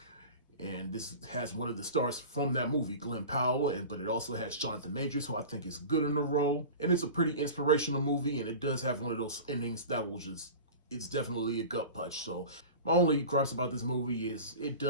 And this has one of the stars from that movie, Glenn Powell, but it also has Jonathan Majors, who I think is good in the role. And it's a pretty inspirational movie, and it does have one of those endings that will just, it's definitely a gut punch. So my only gripes about this movie is it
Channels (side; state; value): both; inverted; correlation -0.35